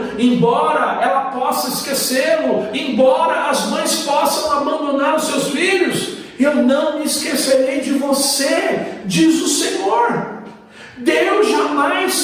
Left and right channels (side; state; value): both; identical; correlation 1.00